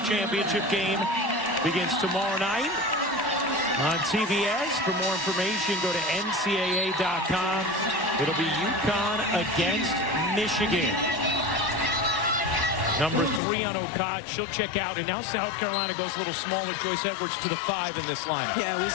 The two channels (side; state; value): right; drops out; at 13.4 s